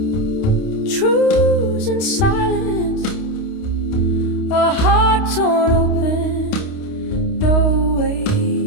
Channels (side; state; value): right; late; 29 ms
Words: truths and silence, a heart torn open, no way